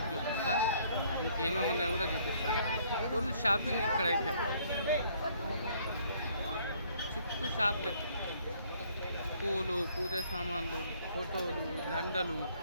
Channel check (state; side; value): inverted; both; correlation -0.63